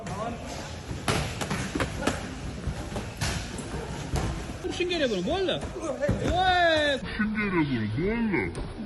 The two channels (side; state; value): both; identical; correlation 1.00